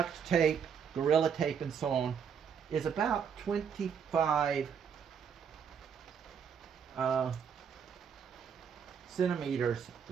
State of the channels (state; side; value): quieter; left; 7.2 dB